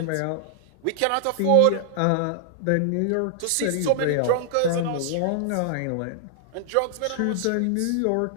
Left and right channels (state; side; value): different; both; correlation -0.01